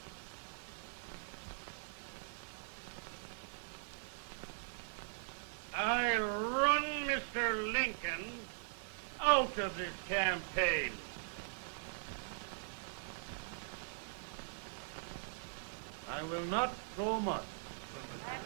I run Mr. Lincoln out of this campaign. I will not go much.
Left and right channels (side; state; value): left; silent; digital silence